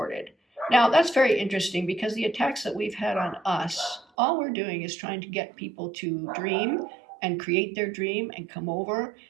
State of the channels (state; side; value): drops out; left; at 4.0 s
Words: Now, that's very interesting because the attacks that we've had on us, all we're doing is trying to get people to dream and create their dream and come over